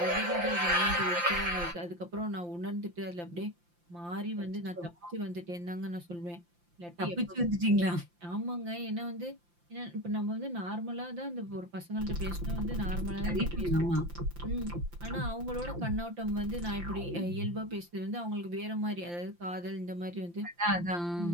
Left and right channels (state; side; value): late; left; 5.8 ms